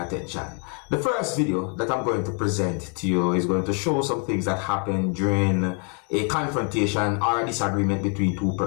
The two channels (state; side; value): quieter; right; 37.9 dB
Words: attention. The first video that I'm going to present to you is going to show some things that happened during a confrontation or a disagreement between two